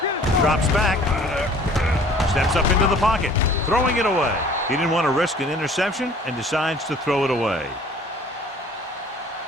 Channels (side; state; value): both; normal; correlation 0.51